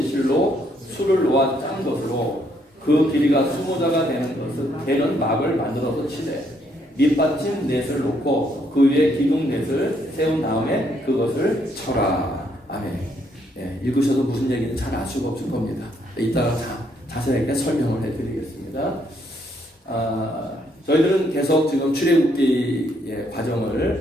실로 술을 놓아 짠 것으로 그 길이가 20자가 되는 막을 만들어서 치되 밑받침 넷을 놓고 그 위에 기둥 넷을 세운 다음에 그것을 쳐라. 아멘. 읽으셔도 무슨 얘기인지 잘 알 수가 없을 겁니다. 이따가 자세하게 설명을 해드리겠습니다. 저희들은 계속 지금 출애굽기의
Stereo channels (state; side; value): normal; both; correlation 0.71